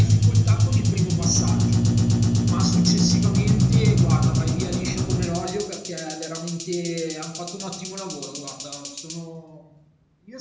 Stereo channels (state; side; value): identical; both; correlation 1.00